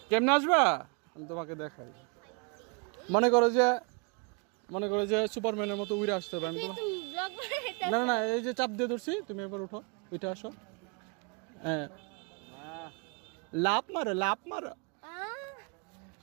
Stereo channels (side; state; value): left; quieter; 33.8 dB